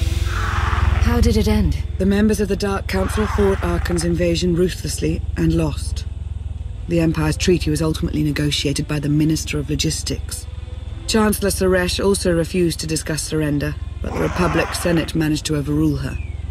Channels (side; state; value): both; identical; correlation 1.00